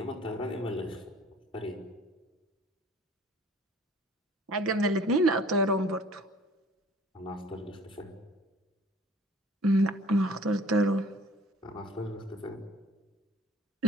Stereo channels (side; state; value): both; normal; correlation 0.51